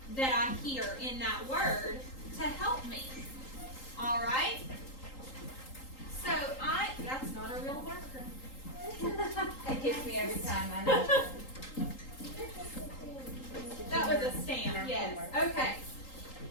that I hear in that word to help me. All right? So that's not a real marker. It gets me every time, I know. That was a stamp, yes. Okay.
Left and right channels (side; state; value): right; late; 3.8 ms